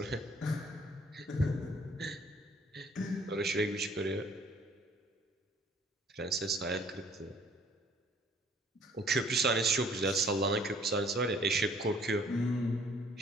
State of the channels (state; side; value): normal; both; correlation 0.57